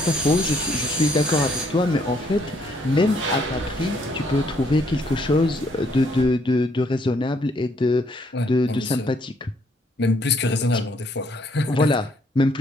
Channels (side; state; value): both; normal; correlation 0.68